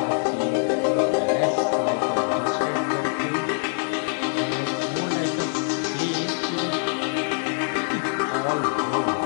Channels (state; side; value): silent; right; digital silence